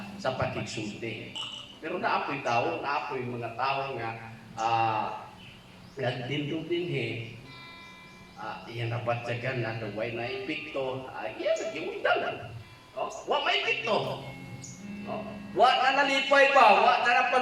sa pakigsulti. Pero naapoy tao, naapoy mga tao nga nagdindog dinhi. Iyan nabatyagan na way na ipikto, iyan nagimundalan. Wa may ipikto. Wa na nalipay pa, wa na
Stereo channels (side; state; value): both; identical; correlation 1.00